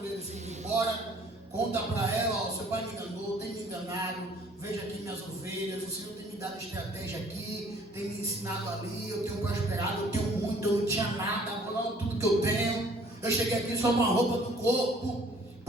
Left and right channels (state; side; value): normal; both; correlation 0.56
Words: ele se ir embora, conta para ela: ó, seu pai me enganou, tem me enganado, veja aqui minhas ovelhas, o Senhor tem me dado estratégia aqui, tem me ensinado ali, eu tenho prosperado, eu tenho muito, eu não tinha nada, agora tudo que eu tenho, eu cheguei aqui só uma roupa do corpo,